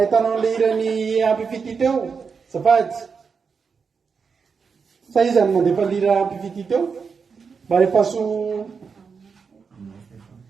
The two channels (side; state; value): left; quieter; 5.6 dB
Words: an'le hirany ampifity teo zafady sa izany mandefa lira ampifity teo mba rehefaso